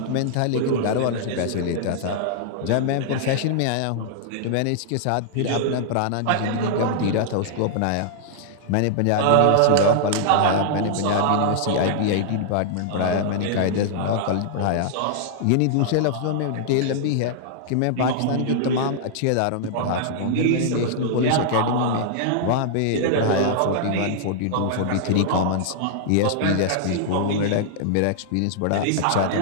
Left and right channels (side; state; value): both; different; correlation -0.01